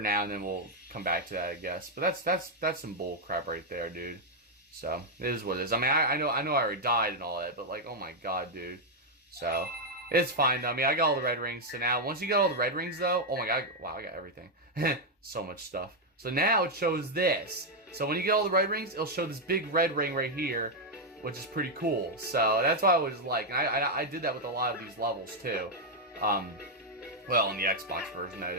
now, and then we'll come back to that, I guess. But that's some bull crap right there, dude. So it is what it is. I mean, I know I already died and all that, but like, oh my god, dude. So it's fine. I mean, I got all the red rings. So now, once you got all the red rings, though, oh my god, wow, I got everything. So much stuff. So now it shows this. So when you get all the red rings, it'll show this big red ring right here, which is pretty cool. So that's why I was like, and I did that with a lot of these levels too. Well, in the Xbox version that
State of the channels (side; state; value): both; normal; correlation 0.00